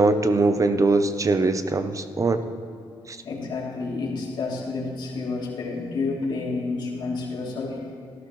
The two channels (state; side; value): normal; both; correlation 0.77